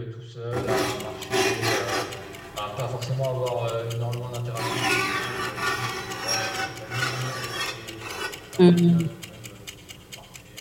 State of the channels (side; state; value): both; identical; correlation 1.00